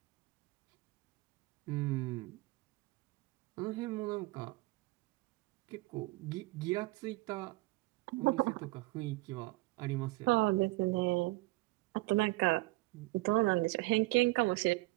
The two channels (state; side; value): quieter; left; 22.6 dB